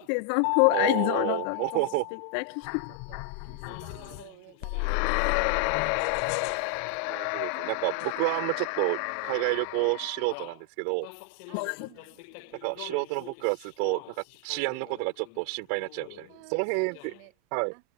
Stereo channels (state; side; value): different; both; correlation 0.00